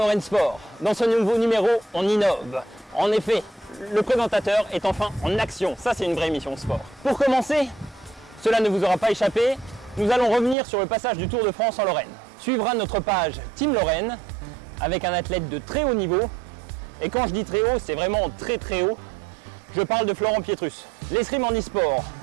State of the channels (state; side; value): drops out; left; at 10.6 s